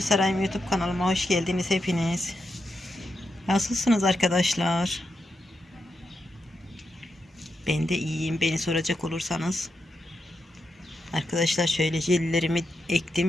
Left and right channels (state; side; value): normal; both; correlation 0.85